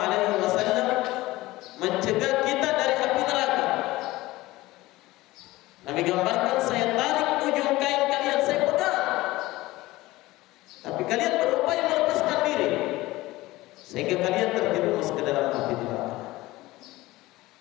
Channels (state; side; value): quieter; right; 18.7 dB